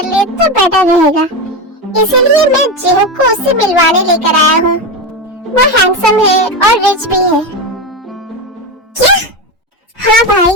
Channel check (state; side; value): normal; both; correlation 0.16